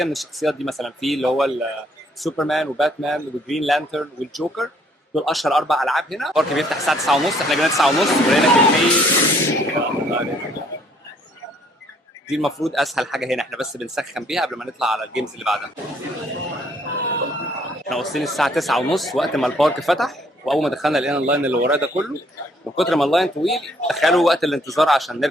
من الشخصيات دي. مثلا في اللي هو سوبرمان وباتمان وجرين لانترن والجوكر، دول اشهر 4 العاب هنا. البارك بيفتح الساعه 9:30، احنا جينا 9:30 ولقينا كميه. دي المفروض اسهل حاجه هنا، احنا بس بنسخن بيها قبل ما نطلع على الجيمز اللي بعدها. احنا واصلين الساعه 9:30 وقت ما البارك فتح، واول ما دخلنا لقينا اللاين اللي وراه ده كله. من كتر ما اللاين طويل تخيلوا وقت الانتظار عشان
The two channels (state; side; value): normal; both; correlation 0.64